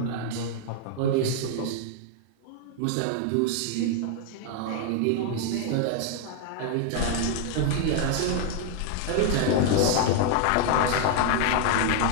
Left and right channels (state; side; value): different; both; correlation 0.00